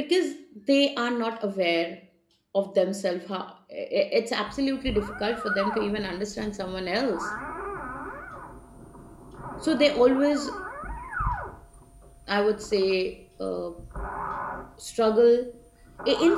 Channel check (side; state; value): both; identical; correlation 1.00